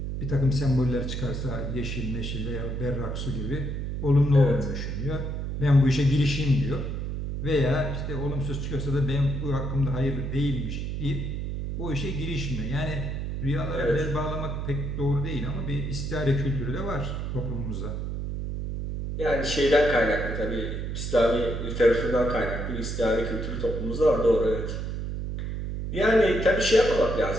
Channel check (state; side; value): noise; right; hum, 3 dB below the sound